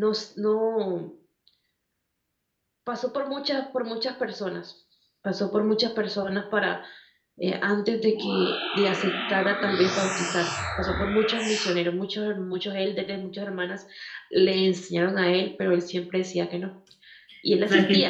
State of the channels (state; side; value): identical; both; correlation 1.00